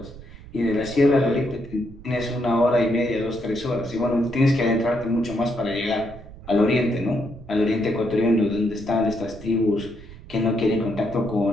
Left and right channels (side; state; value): right; noise; rumble, 17 dB below the sound